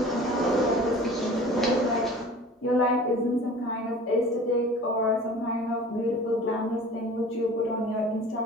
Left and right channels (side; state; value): both; normal; correlation 0.43